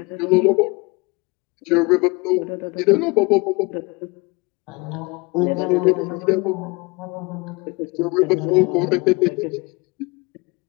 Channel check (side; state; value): right; quieter; 26.5 dB